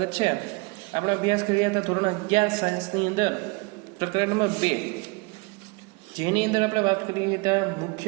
છે. આપણે અભ્યાસ કરી રહ્યા હતા ધોરણ 11 સાયન્સની અંદર પ્રકરણ નંબર 2, જેની અંદર આપણે વાત કરી હતા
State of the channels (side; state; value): left; quieter; 28.1 dB